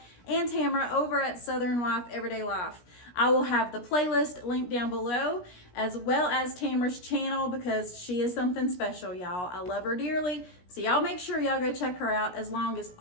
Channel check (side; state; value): right; late; 17 ms